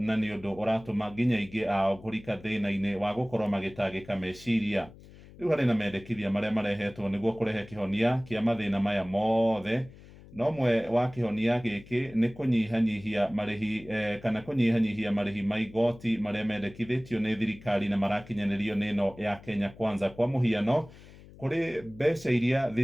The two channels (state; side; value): noise; left; hum, 20 dB below the sound